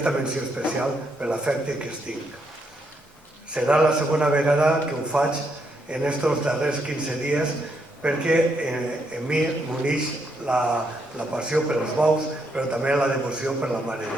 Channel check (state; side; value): normal; both; correlation 0.77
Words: menció especial per l'afecte que es tinc. Serà la segona vegada que ho faig en estos darrers 15 dies perquè en mi m'uneix la passió per els bous, però també la devoció per la Mare